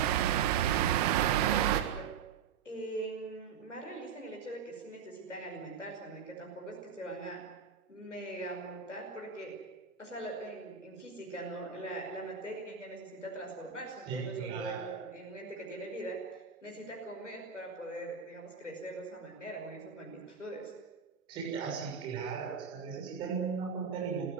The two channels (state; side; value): quieter; left; 7.2 dB